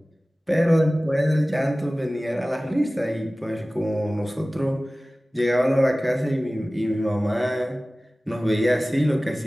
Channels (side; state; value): both; normal; correlation 0.97